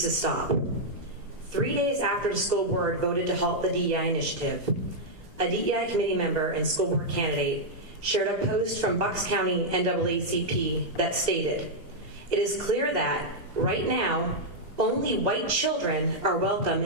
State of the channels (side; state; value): left; late; 2.8 ms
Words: to stop. 3 days after the school board voted to halt the DEI initiative, a DEI committee member and school board candidate shared a post from Bucks County NAACP that stated, "It is clear that, right now, only white children are welcome